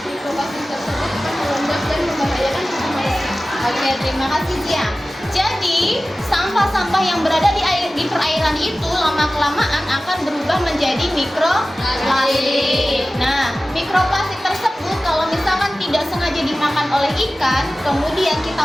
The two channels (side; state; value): both; normal; correlation 0.96